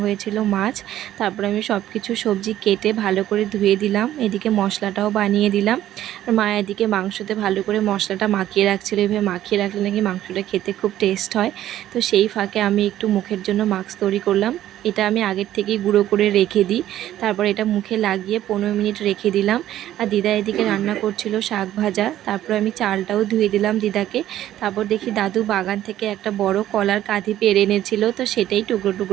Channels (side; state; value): left; quieter; 12.8 dB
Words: হয়েছিল মাছ। তারপর আমি সব কিছু সবজি কেটে ভালো করে ধুয়ে দিলাম, এদিকে মশলাটাও বানিয়ে দিলাম। আর মা এদিকে মাংসতে ভালো করে মশলাটা মাখিয়ে রাখছিল, এভাবে মাখিয়ে রাখলে নাকি মাংসটা খেতে খুব টেস্ট হয়। তো সেই ফাঁকে আমি একটু মুখের জন্য মাস্ক তৈরি করলাম। এটা আমি আগের থেকেই গুঁড়ো করে রেখে দিই, তারপর এটা মুখে লাগিয়ে 15 মিনিট রেখে দিলাম। আর দিদা এদিকে রান্না করছিল শাক ভাজা, তারপর আমি চালটাও ধুয়ে দিলাম দিদাকে। তারপর দেখি দাদু বাগান থেকে একটা বড় কলার কাঁধি পেড়ে এনেছিল, তো সেটাই টুকরো